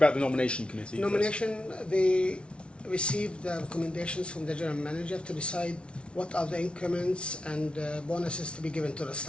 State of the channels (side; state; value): right; late; 0.059 ms